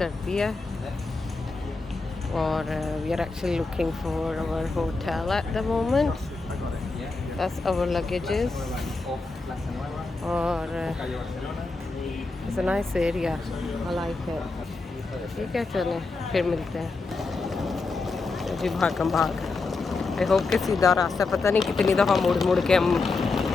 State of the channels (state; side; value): quieter; right; 3.8 dB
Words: है और we are actually looking for our hotel at the moment that's our luggages और it's a nice area I like it ठीक है चलें फिर मिलते हैं जी भागम भाग आई होप के सीधा रास्ता पता नहीं कितनी दफ़ा मुड़ मुड़ के हम